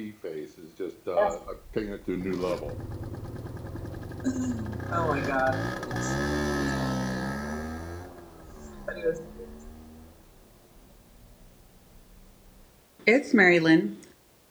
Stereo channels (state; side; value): identical; both; correlation 1.00